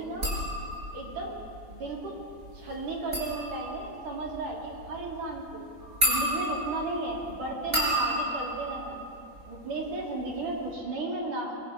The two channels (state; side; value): late; left; 4.2 ms